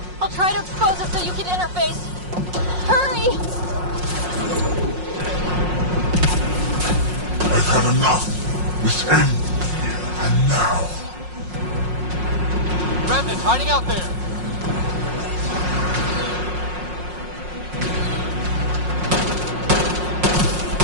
I'll try to expose it so you can interface. Hurry! I've had enough. This ends here and now. Remnant hiding out there.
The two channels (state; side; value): late; left; 5.5 ms